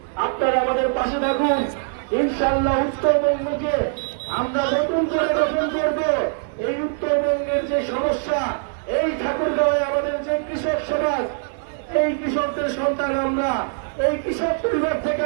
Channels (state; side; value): silent; left; 64 dB below the other